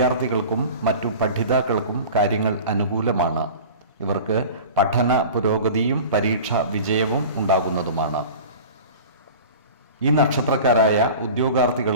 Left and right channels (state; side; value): inverted; both; correlation -0.38